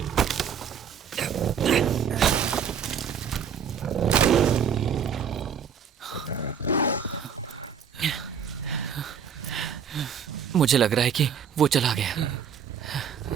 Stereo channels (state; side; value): quieter; left; 7.3 dB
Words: मुझे लग रहा है कि वो चला गया।